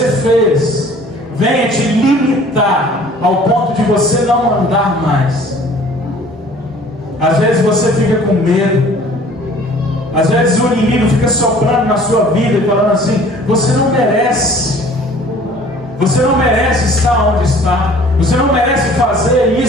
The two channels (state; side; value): normal; both; correlation 0.51